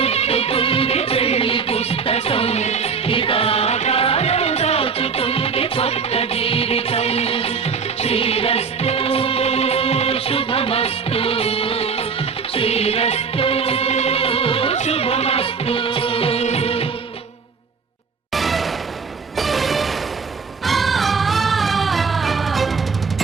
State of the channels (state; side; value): quieter; left; 5.5 dB